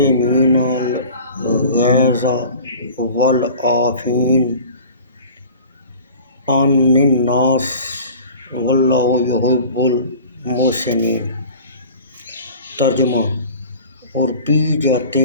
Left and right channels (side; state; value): both; inverted; correlation -0.41